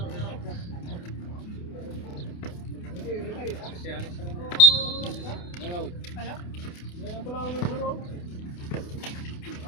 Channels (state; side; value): late; right; 28 ms